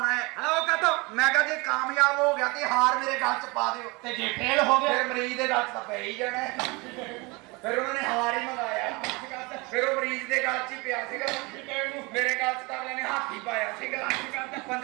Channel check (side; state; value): left; quieter; 26.3 dB